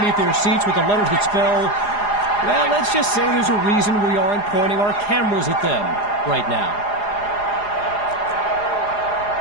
their seats with the letters that spell, well, let's just say there's a reason we aren't pointing our cameras at them right now.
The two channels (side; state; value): right; late; 4.9 ms